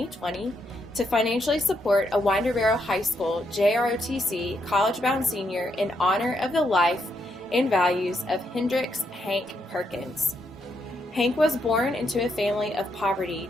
to financially support a Winder Barrow High School Jrotc college-bound senior in honor of the life and values of Hendrix Hank Perkins. Hank was born into a family of poverty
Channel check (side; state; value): both; normal; correlation 0.78